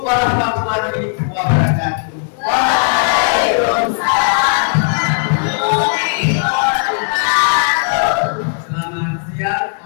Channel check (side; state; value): right; silent; digital silence